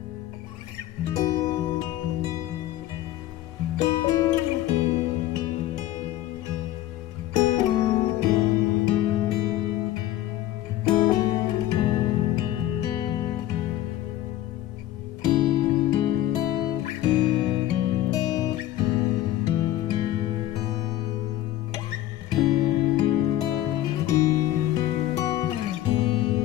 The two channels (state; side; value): quieter; right; 13.9 dB